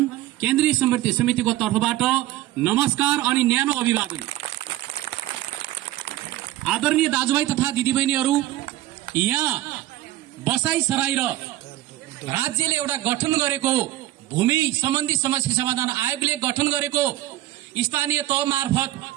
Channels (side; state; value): left; quieter; 15.4 dB